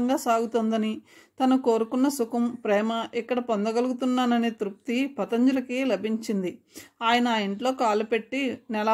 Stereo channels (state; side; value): identical; both; correlation 1.00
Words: సాగుతుందని, తను కోరుకున్న సుఖం, ప్రేమ ఇక్కడ పొందగలుగుతున్నాననే తృప్తి పతంజలికి లభించింది. ఆయన ఆ ఇంట్లో కాలు పెట్టి